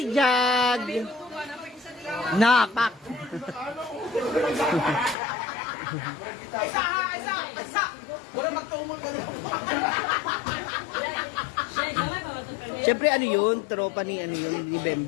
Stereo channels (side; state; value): right; drops out; at 5.2 s